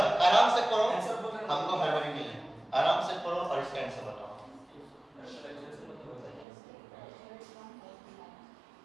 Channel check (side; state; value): left; drops out; at 6.5 s